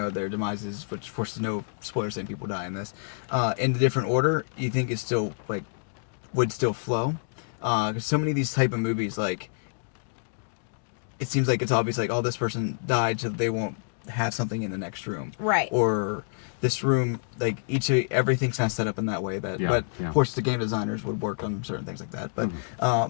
demises, which of course there's no spoilers saying people die in this, in a different order, you think it's still would still flow. Because so many of these type of movies, it seems like it's obvious, this person died, so they won't have something in the next room, right? Or this room, everything's kind of set up in that way. But of course, the game designers would work on certain things like that. But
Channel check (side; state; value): right; silent; digital silence